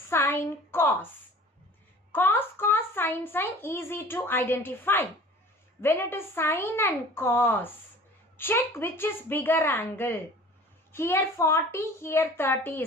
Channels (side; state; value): both; normal; correlation 0.45